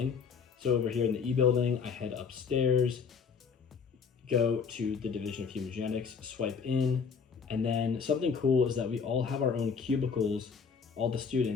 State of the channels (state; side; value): quieter; right; 5.9 dB